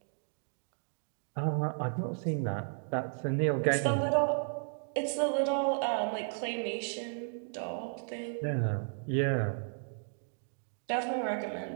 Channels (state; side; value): silent; left; digital silence